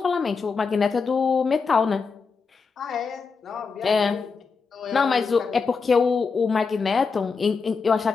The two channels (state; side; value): quieter; right; 5.0 dB